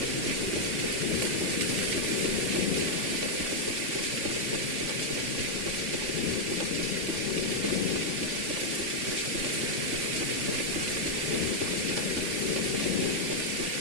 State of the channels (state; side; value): late; left; 3.5 ms